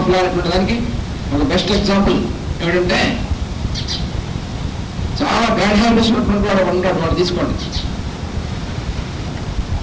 అనేటువంటి దానికి ఒక బెస్ట్ ఎగ్జాంపుల్ ఏమిటంటే చాలా బ్యాడ్ హ్యాబిట్స్ ఉన్నటువంటి వాడు ఉంటాడు. వాడు తీసుకోండి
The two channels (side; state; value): both; identical; correlation 1.00